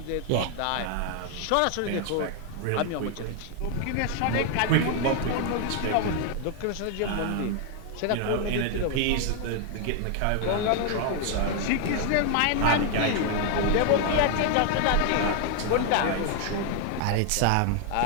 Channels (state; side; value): different; both; correlation 0.00